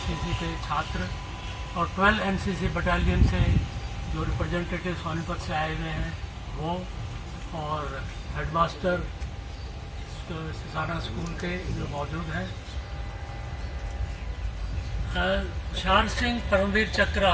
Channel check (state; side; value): identical; both; correlation 1.00